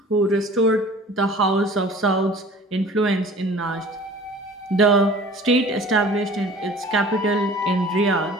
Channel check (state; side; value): normal; both; correlation 0.46